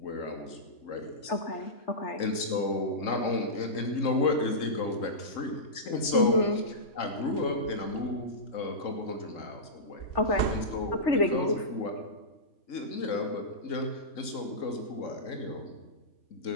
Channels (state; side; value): late; right; 3.7 ms